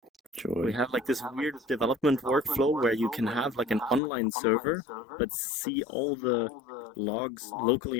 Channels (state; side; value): drops out; right; at 4.0 s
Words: We Joy. have like this weird development workflow where you can have like an online server, but see all the logs